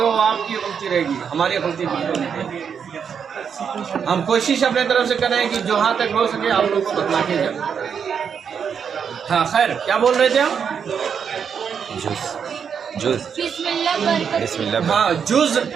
वो आपकी गलती रहेगी, हमारी गलती बिल्कुल नहीं। हम कोशिश अपने तरफ से करें कि जो हाँ तक हो सके आप लोग को बतला के जाए। हाँ खैर, क्या बोल रहे थे हम? बिस्मिल्लाह। हाँ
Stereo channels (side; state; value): left; quieter; 7.1 dB